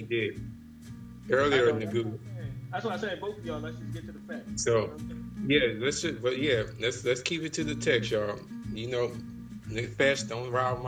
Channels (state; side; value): identical; both; correlation 1.00